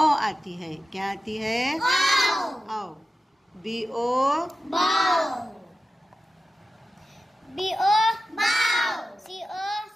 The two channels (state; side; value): normal; both; correlation 0.93